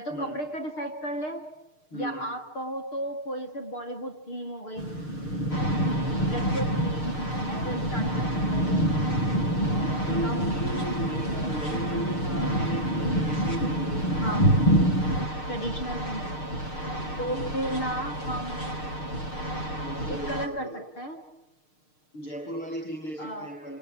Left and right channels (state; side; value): late; right; 6.6 ms